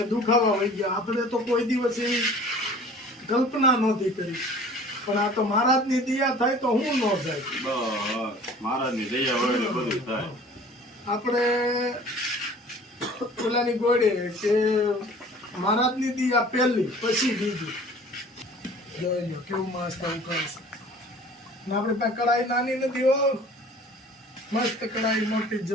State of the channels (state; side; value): normal; both; correlation 0.47